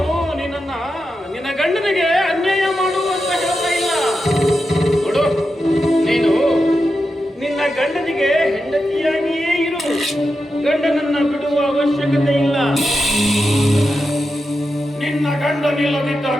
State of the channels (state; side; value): normal; both; correlation 0.89